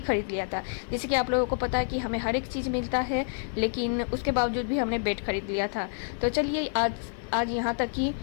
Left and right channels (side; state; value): right; silent; 56 dB below the other